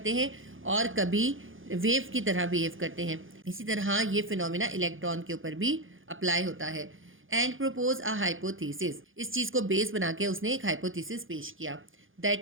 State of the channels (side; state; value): left; late; 0.58 ms